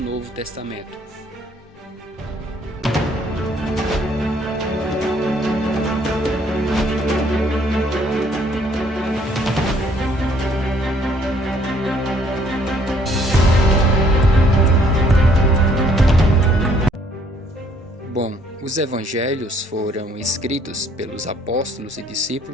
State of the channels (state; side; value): normal; both; correlation 0.63